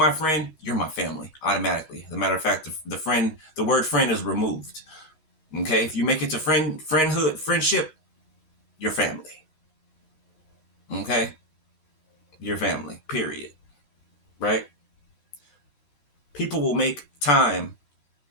friend, you're my family automatically. As a matter of fact, the word friend is removed. Okay, if you make it to friendship, you're family. Okay, you're family. Period. Right? People will make time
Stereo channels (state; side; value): late; right; 13 ms